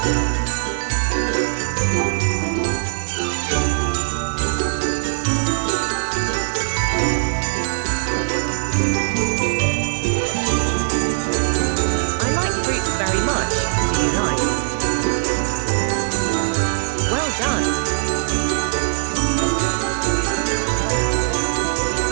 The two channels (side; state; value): left; silent; 57 dB below the other